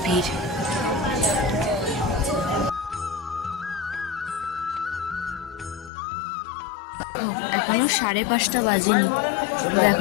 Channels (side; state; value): right; drops out; at 5.9 s